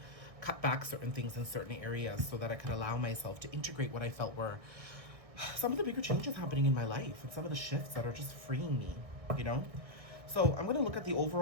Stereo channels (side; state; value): left; late; 1.6 ms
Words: cut back certain things in certain areas so that I could allow myself to integrate what I felt were some of the bigger changes happening in my life and some of the shifts that are just freeing me, you know? So I'm going to look at the